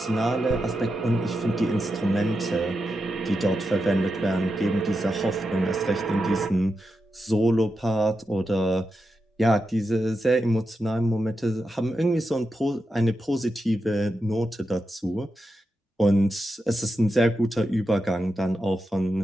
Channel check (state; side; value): normal; both; correlation 0.88